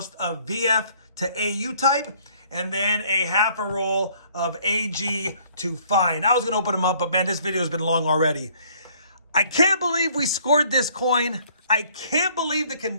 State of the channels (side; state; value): both; inverted; correlation -0.61